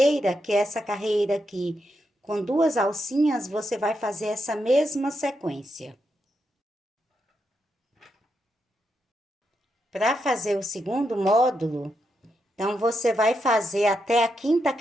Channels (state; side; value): normal; both; correlation 0.83